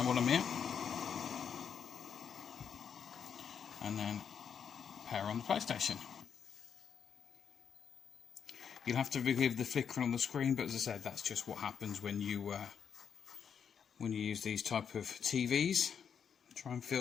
while I'm here, and then power on the PlayStation. You'll have to forgive the flickering on the screen, but as I said, that's just what happens when you use these type of TVs. Try and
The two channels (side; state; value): right; quieter; 7.3 dB